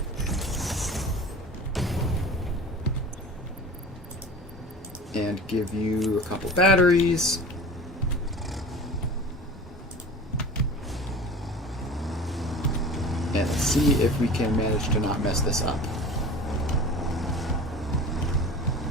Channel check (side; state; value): both; normal; correlation 0.37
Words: And give you a couple batteries. And let's see if we can manage to not mess this up.